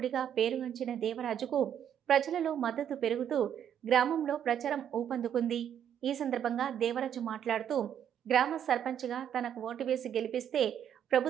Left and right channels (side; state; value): left; quieter; 9.4 dB